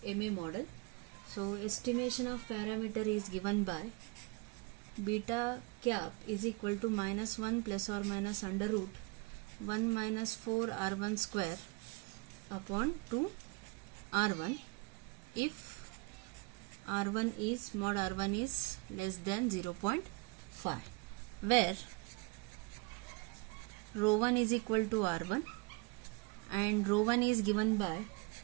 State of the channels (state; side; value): quieter; left; 28.0 dB